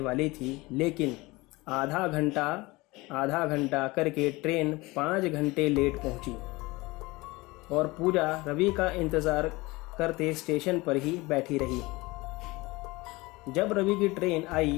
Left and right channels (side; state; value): right; quieter; 22.3 dB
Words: थी, लेकिन आधा घंटा करके ट्रेन 5 घंटे लेट पहुंची और पूजा रवि का इंतज़ार करते स्टेशन पर ही बैठी रही। जब रवि की ट्रेन